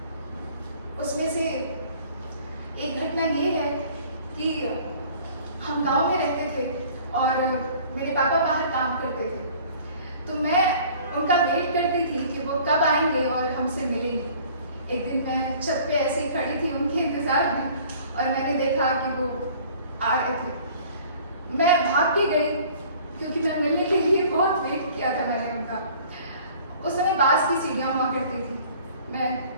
उसमें से एक घटना ये है कि हम गांव में रहते थे और मेरे पापा बाहर काम करते थे, तो मैं उनका वेट करती थी कि वो कब आएंगे और हमसे मिलेंगे। एक दिन मैं छत पे ऐसे ही खड़ी थी उनके इंतज़ार में और मैंने देखा कि वो आ रहे थे। मैं भाग के गई क्योंकि मैं मिलने के लिए बहुत वेट किया था मैंने उनका। उस समय बांस की सीढ़ियाँ हुआ करती थी। मैं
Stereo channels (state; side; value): inverted; both; correlation -0.51